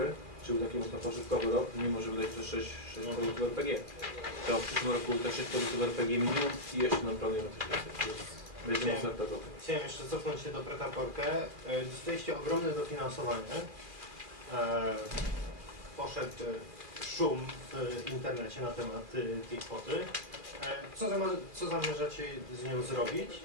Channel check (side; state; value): left; late; 2.5 ms